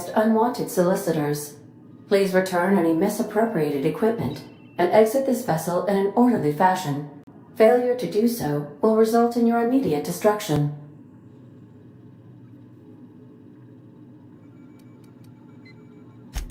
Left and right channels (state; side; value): identical; both; correlation 1.00